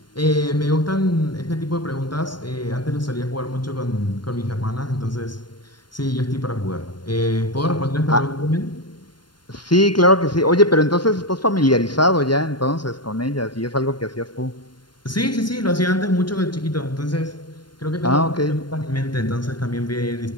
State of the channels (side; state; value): right; late; 0.72 ms